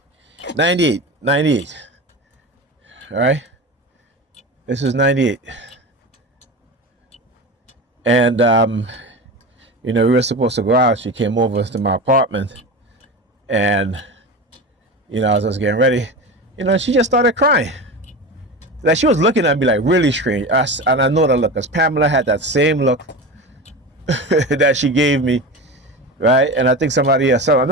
98. All right. This is 98. And you know, we were supposed to go out. She came over to my apartment, and, you know, as I was getting ready, you know, she just started crying. Like, she was looking at me like really strange. And I know that look, because Pamela had that same look that she gave me, right? And I think somebody else,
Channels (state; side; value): normal; both; correlation 0.27